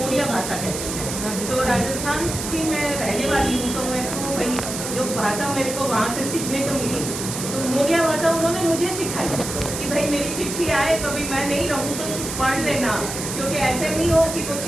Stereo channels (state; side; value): noise; right; hiss, 6 dB below the sound